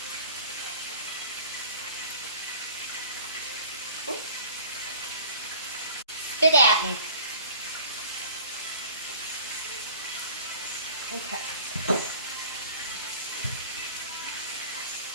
Ooh. Spit at me. Okay.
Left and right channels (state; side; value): inverted; both; correlation -0.47